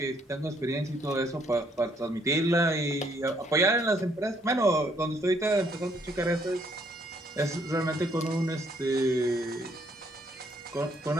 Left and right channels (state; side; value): normal; both; correlation 0.68